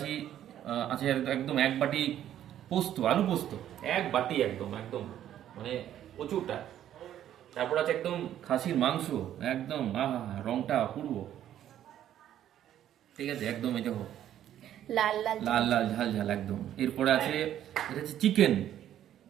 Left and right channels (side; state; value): left; quieter; 11.3 dB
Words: একদম এক বাটি পোস্ত, আলু পোস্ত, এক বাটি একদম একদম, মানে প্রচুরটা। তারপর আছে একদম খাসির মাংস, একদম আহা, রংটা অপূর্ব, ঠিক আছে, একদম এই দেখো লাল লাল লাল লাল ঝাল ঝাল একদম। এরপরে আছে, এটা হচ্ছে চিকেন,